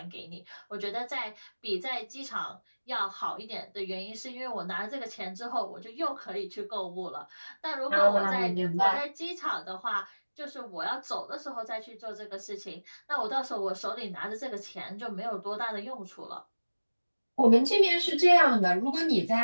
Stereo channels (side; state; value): both; inverted; correlation -1.00